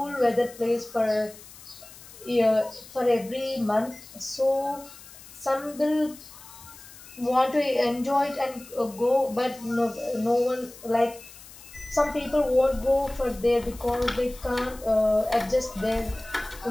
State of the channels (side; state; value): left; noise; hiss, 19 dB below the sound